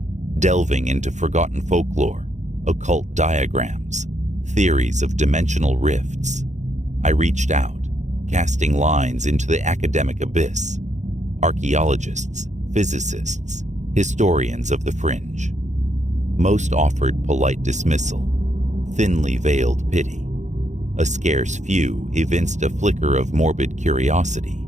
delving into forgotten folklore, occult diagrams, theories of dimensional rifts. I reached out, casting lines into the academic abyss. Archaeologists, physicists, historians of the fringe. Most offered polite dismissal, thinly veiled pity. A scarce few evinced a flicker of morbid curiosity,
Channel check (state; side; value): late; left; 0.34 ms